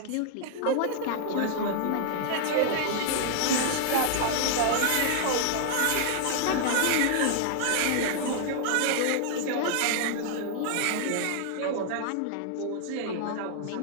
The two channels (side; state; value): both; different; correlation 0.00